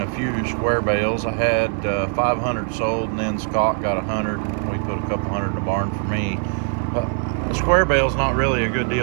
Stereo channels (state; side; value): silent; left; 61 dB below the other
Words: a few square bales. I had 500 sold, and then Scott got 100. We put a couple hundred in the barn for me. The square bale's not really a good